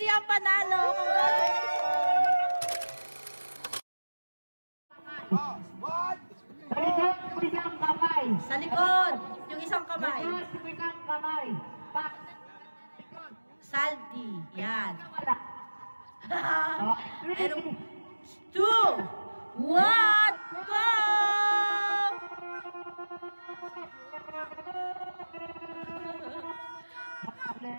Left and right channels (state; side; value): inverted; both; correlation -1.00